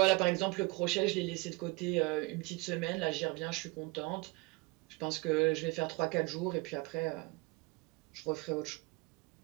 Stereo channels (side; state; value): left; quieter; 24.9 dB